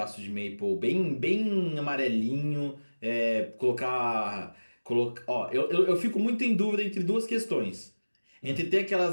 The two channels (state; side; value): inverted; both; correlation -1.00